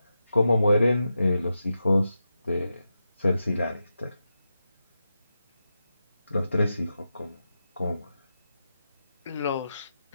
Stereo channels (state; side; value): inverted; both; correlation -0.89